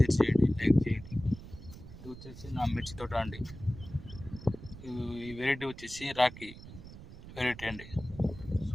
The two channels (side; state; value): right; noise; rumble, 15 dB below the sound